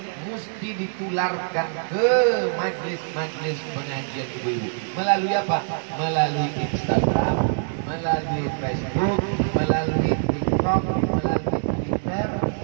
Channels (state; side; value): silent; left; digital silence